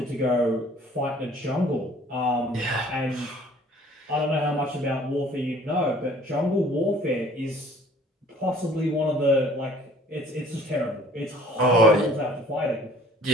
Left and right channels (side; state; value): both; normal; correlation 0.53